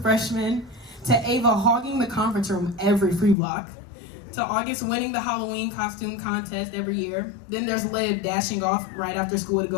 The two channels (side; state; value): right; drops out; at 3.4 s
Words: freshmen. To Ava hogging the conference room every free block. To August winning the Halloween costume contest every year. Then there's Liv dashing off right after school to